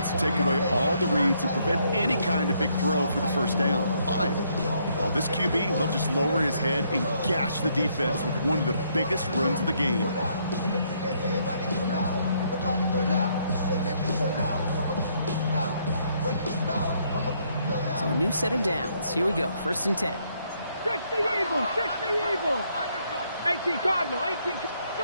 to take away all the reads and prevent any kind of big throw for the 1st down. Fine. Well, this QB, he'll just lower his head and gash the defense with one of the biggest runs of the game. So a new set of downs. Here we go. 1st and 10. 60 Eagles, 60 Eagles. 18 Cardinal, 18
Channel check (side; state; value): both; inverted; correlation -0.71